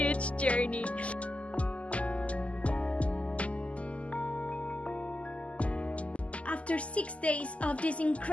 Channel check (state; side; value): late; right; 0.063 ms